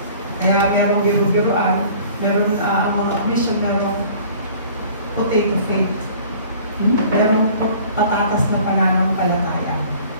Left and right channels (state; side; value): inverted; both; correlation -0.49